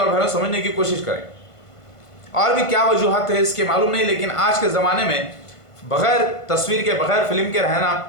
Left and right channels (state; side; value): late; right; 1.5 ms